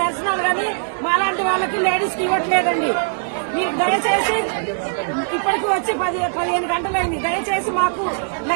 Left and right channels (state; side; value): silent; left; digital silence